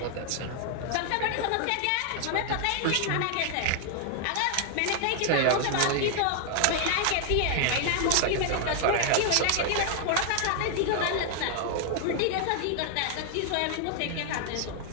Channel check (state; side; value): different; both; correlation 0.00